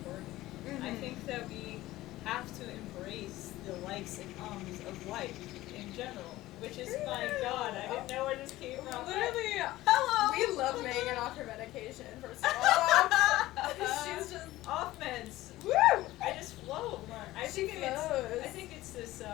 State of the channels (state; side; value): quieter; right; 16.8 dB